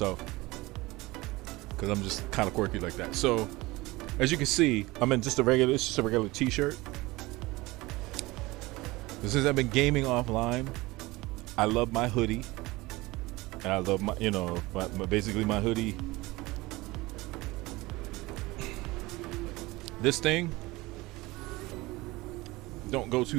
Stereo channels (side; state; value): left; quieter; 21.0 dB